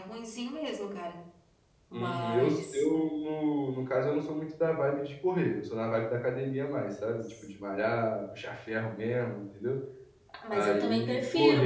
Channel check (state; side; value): identical; both; correlation 1.00